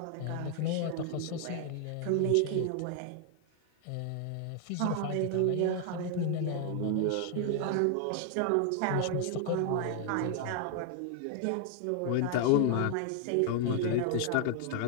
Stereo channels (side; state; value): both; different; correlation 0.00